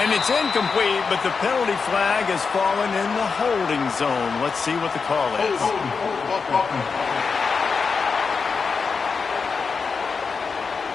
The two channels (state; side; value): quieter; right; 5.2 dB